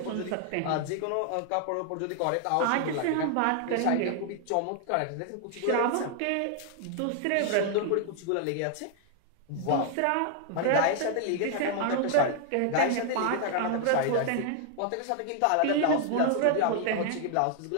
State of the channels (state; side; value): different; both; correlation 0.00